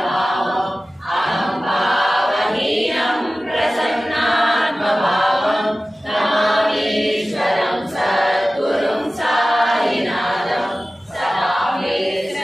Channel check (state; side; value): normal; both; correlation 0.96